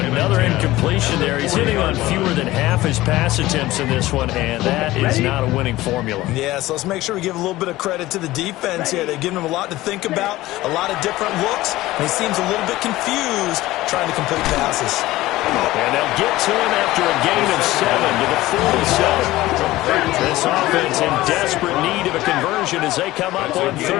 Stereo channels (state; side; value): quieter; right; 17.3 dB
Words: incompletion there. He's hitting on fewer than half his pass attempts in this one, and that is not a winning formula. Yeah, so let's make sure we give a little bit of credit to the defense here. They've given him a lot to think about, a lot of different looks, and he seems a little bit confused trying to complete passes. And they'll get to him after a gain of 7 to the 47. This offense in desperate need of a conversion as they come up on